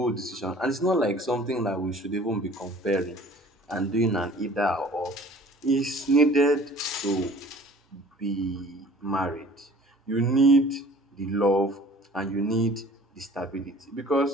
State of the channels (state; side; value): normal; both; correlation 0.49